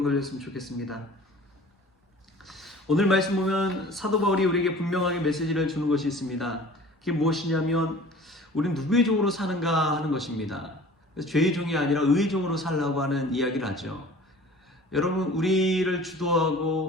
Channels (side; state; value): both; normal; correlation 0.45